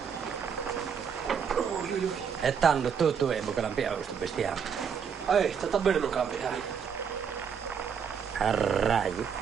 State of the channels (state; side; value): quieter; left; 7.0 dB